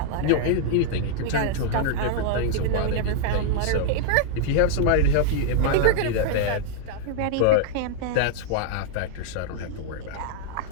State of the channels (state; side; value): different; both; correlation -0.01